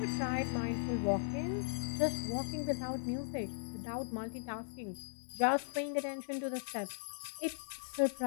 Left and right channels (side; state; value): right; silent; digital silence